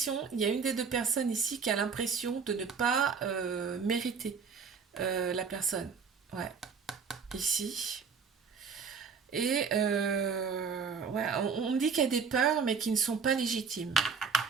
il y a une des deux personnes ici qui a l'impression de ne pas mériter la personne. Ouais, ici. Et ouais, on me dit qu'il y a des peurs, mais qui ne sont pas légitimes.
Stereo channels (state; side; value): quieter; left; 5.8 dB